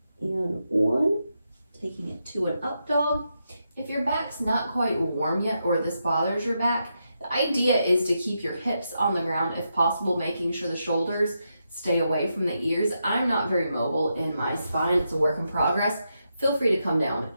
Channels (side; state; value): both; inverted; correlation -0.84